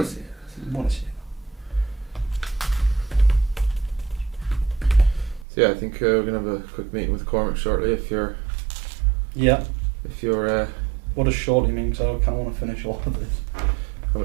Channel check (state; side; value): drops out; left; at 5.5 s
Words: Buonasera. So yeah, I think we're gonna have a quick meeting with Cormac shortly. If you're, what does shortly mean? So I kind of want to finish all of this. How